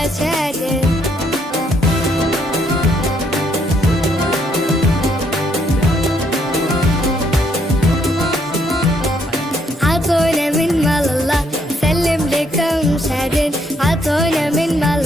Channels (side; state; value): both; normal; correlation 0.71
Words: شادد. عطونا من مال الله سلم لكم شادن. عطونا من